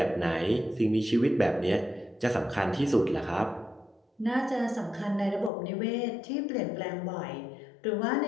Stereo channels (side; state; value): right; drops out; at 5.5 s